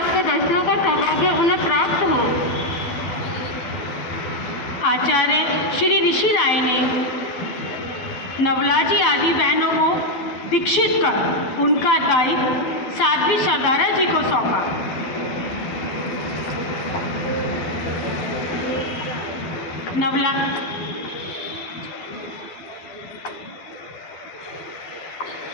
दर्शनों का सौभाग्य उन्हें प्राप्त हो। आचार्य श्री ऋषि राय ने नवला जी आदि बहनों को दीक्षित कर उनका दायित्व साध्वी सरदारा जी को सौंपा।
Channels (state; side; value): late; right; 12 ms